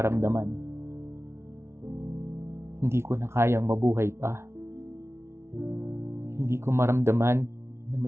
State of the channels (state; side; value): late; left; 0.13 ms